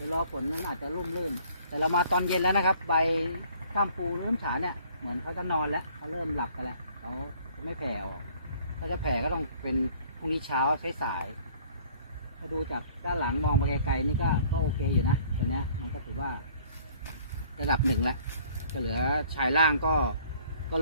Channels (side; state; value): both; inverted; correlation -0.57